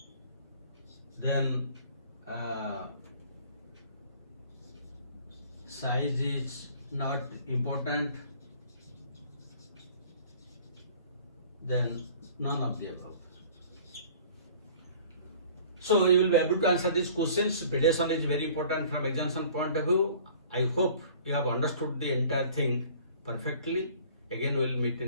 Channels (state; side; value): inverted; both; correlation -0.50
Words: then size is not important, then none of the above. So you will be able to answer these questions. Predation is very important from examination point of view. I hope you have understood the entire thing perfectly. Again we will meet